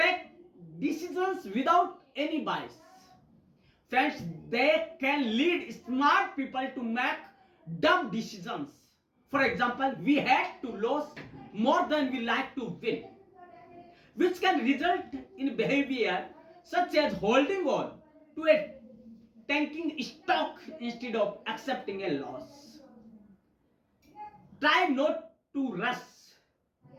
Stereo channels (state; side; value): identical; both; correlation 1.00